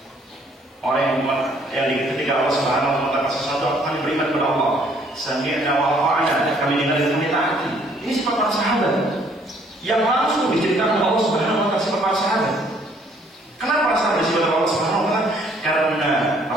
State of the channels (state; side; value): normal; both; correlation 0.63